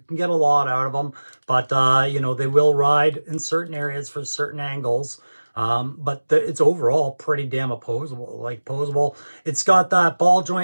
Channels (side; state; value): both; inverted; correlation -1.00